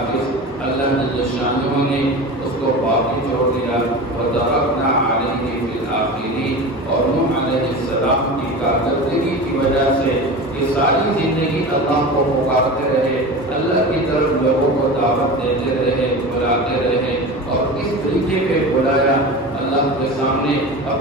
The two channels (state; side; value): normal; both; correlation 0.30